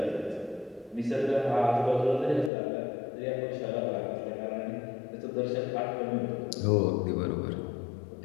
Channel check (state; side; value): drops out; right; at 2.5 s